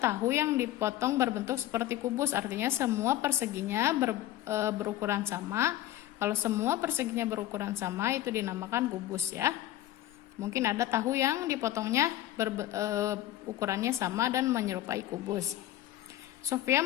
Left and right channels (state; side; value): quieter; right; 13.7 dB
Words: yang dipotong berbentuk seperti kubus, artinya semua perseginya berukuran sama. Kalau semua perseginya berukuran sama itu dinamakan kubus ya. Mungkin ada tahu yang dipotongnya ukurannya sama dan menyerupai kubus. Sofia